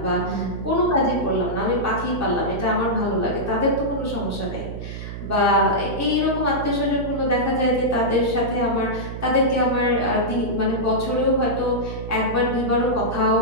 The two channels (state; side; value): noise; right; hum, 9 dB below the sound